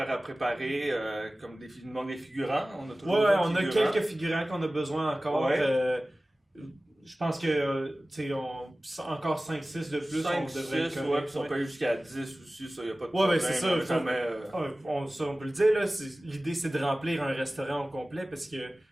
à préparer, comme il manque des figurants. On a toujours on a quelques figurants qu'on a besoin encore. Je pense que, encore 5-6 de plus, 5, on devrait 6, puis on peut aller jusqu'à 10 aussi, ça, y a pas de problème. C'est ça. On peut le dire, là, l'idée, c'est de remplir un restaurant au complet, parce que,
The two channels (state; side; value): normal; both; correlation 0.97